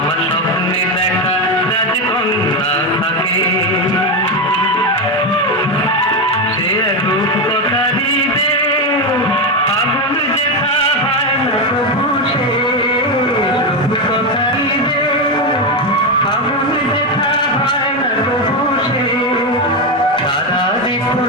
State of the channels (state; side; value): normal; both; correlation 0.10